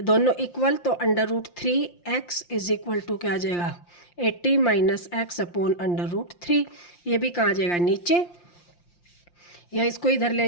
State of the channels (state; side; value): late; right; 5.7 ms